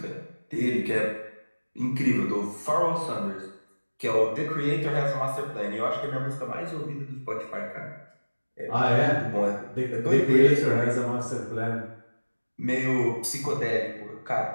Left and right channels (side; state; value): both; inverted; correlation -1.00